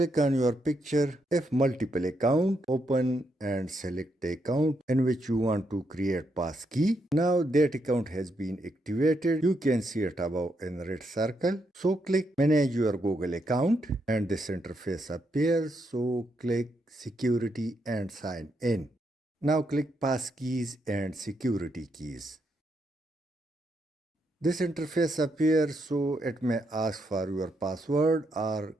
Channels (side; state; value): both; normal; correlation 0.79